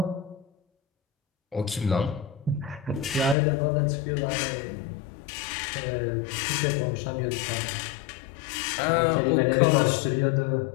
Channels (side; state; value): right; drops out; at 3.4 s